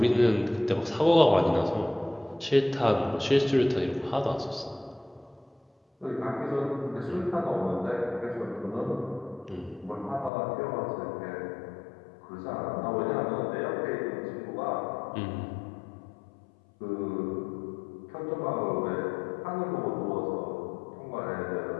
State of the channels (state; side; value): drops out; right; at 10.3 s